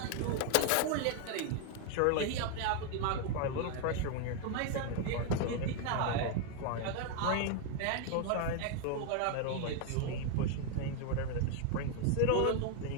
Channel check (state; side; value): different; both; correlation 0.01